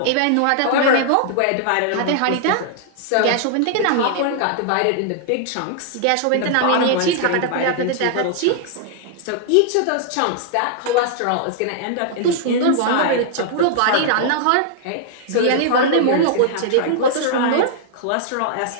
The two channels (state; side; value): different; both; correlation -0.01